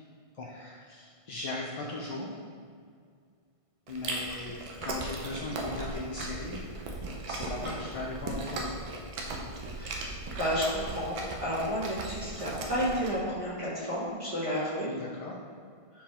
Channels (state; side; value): late; left; 1.5 ms